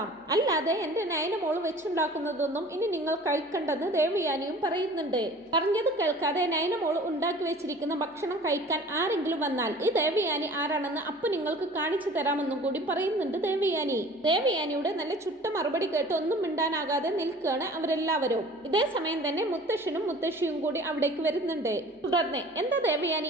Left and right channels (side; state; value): both; normal; correlation 0.45